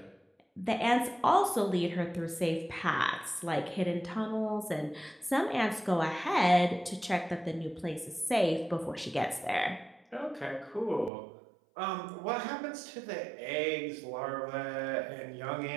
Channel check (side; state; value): left; drops out; at 11.1 s